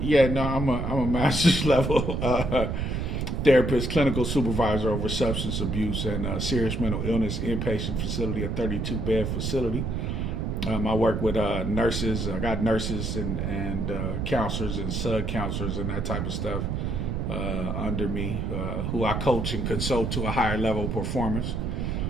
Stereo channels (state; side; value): noise; right; rumble, 1 dB below the sound